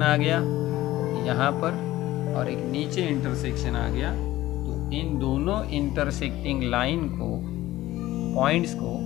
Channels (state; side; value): quieter; right; 16.0 dB